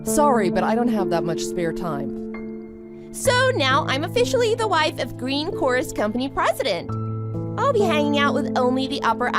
Sorry, but I don't have that much spare time. So now I'm officially the wife of Greencore's company president. I'll be hanging out with only the upper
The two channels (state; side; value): identical; both; correlation 1.00